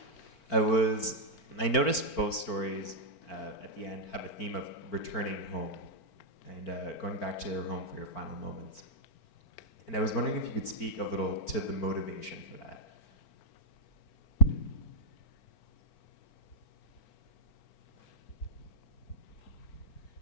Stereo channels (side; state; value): right; late; 4.4 ms